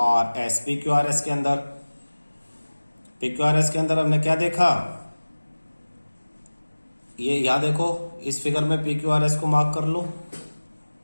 के अंदर हमने क्या देखा, ये यहां देखो इस फिगर में PQRS को मार्क कर लो,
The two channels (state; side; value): inverted; both; correlation -1.00